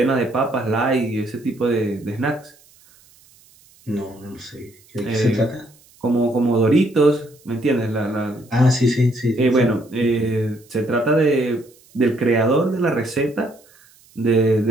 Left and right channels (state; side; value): noise; right; hiss, 29 dB below the sound